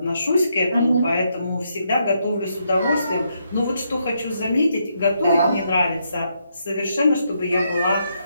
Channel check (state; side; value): inverted; both; correlation -0.78